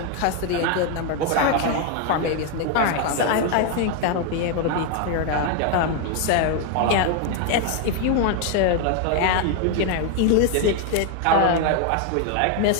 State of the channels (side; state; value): both; different; correlation 0.00